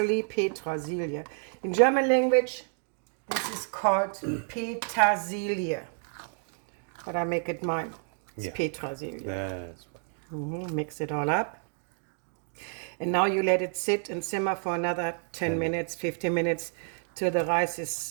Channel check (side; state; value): left; silent; 56 dB below the other